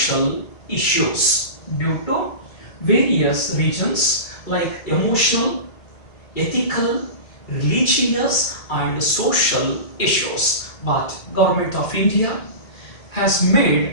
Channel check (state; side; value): late; right; 2.3 ms